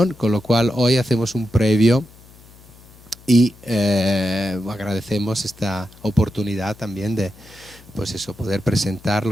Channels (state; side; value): noise; left; hum, 24 dB below the sound